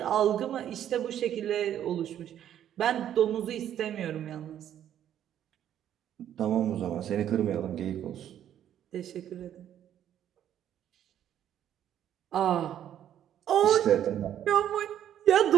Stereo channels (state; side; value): quieter; left; 10.6 dB